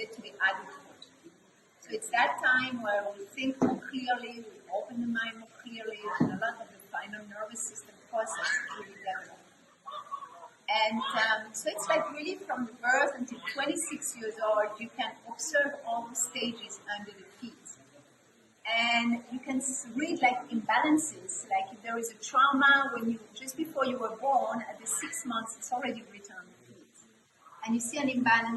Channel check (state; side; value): identical; both; correlation 1.00